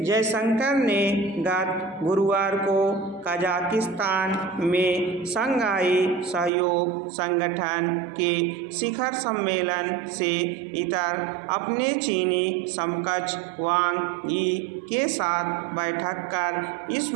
ने गत गुरुवार को कजाकिस्तान में शंघाई सहयोग संगठन के शिखर सम्मेलन से इतर अपने चीनी समकक्ष वांग यी के साथ बैठक कर इस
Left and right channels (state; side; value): drops out; left; at 6.5 s